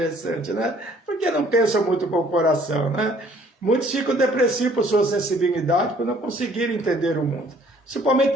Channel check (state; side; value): normal; both; correlation 0.59